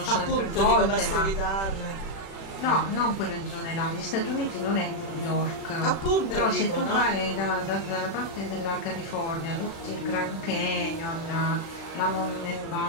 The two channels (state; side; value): late; right; 36 ms